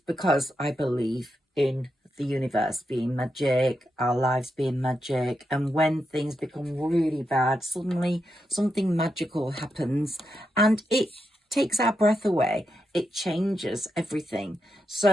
I believe in the universe being magic, our lives being magic, and when things become really bad, suddenly something magical happens and it takes our breath away. It changes everything.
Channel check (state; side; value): normal; both; correlation 0.85